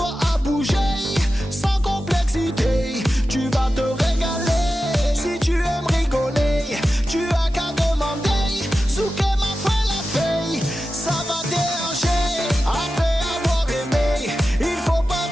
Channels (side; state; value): both; normal; correlation 0.93